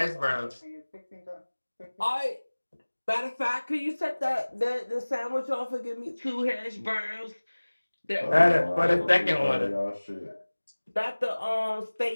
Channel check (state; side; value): inverted; both; correlation -1.00